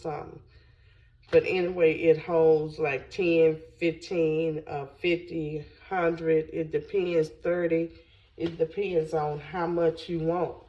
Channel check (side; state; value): both; identical; correlation 1.00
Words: But anyway, it holds like 10, 15, 50, 100. It depends, 30. It depends on how much you want.